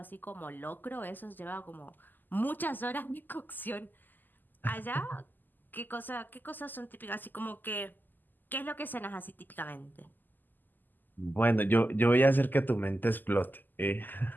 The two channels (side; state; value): right; late; 0.088 ms